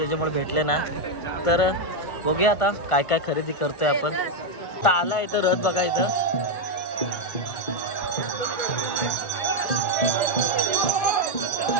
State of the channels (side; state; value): right; late; 1.5 ms